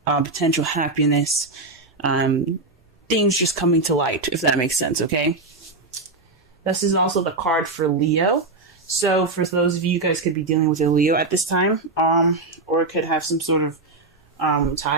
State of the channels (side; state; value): left; quieter; 3.4 dB